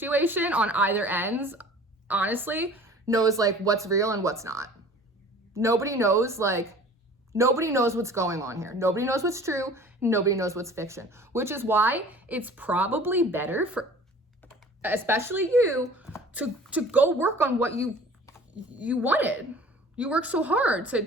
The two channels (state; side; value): normal; both; correlation 0.46